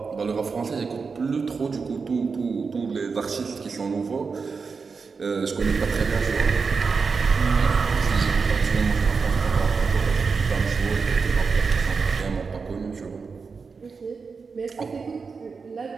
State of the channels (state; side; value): quieter; left; 5.0 dB